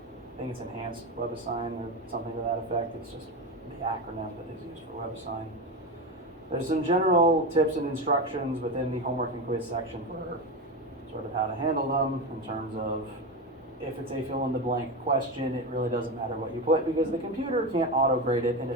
I think it's Enhanced WebAssign or something to that effect. It's just the acronym that is used for WebAssign. There's some general tips and instructions within the homework and quiz section for sort of how to handle them in terms of, if it's a fill-in-the-blank question, it really doesn't matter what you put because the computer can't auto-grade it and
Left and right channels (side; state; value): both; normal; correlation 0.18